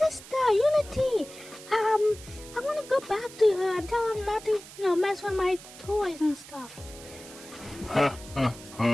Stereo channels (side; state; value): right; noise; hiss, 17 dB below the sound